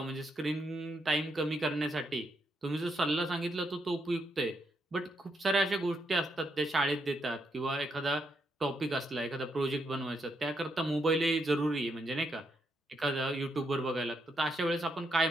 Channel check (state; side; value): normal; both; correlation 0.79